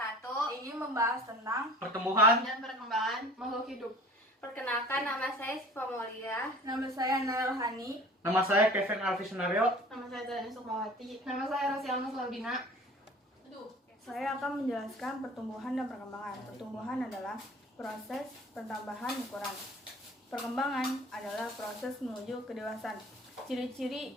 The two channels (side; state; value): both; normal; correlation 0.45